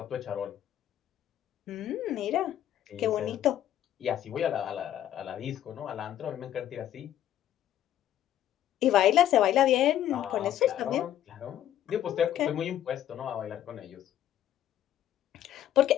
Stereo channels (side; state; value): right; quieter; 11.6 dB